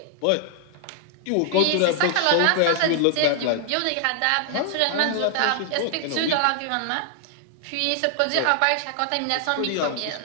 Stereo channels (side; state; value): both; different; correlation 0.00